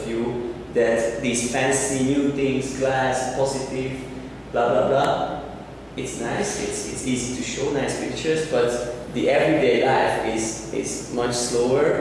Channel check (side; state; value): both; identical; correlation 1.00